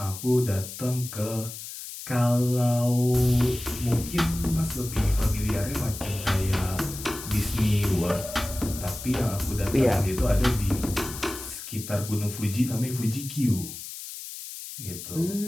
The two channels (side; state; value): left; noise; hiss, 10 dB below the sound